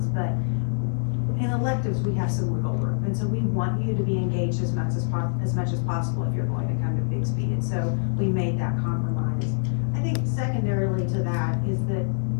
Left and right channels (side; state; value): right; silent; digital silence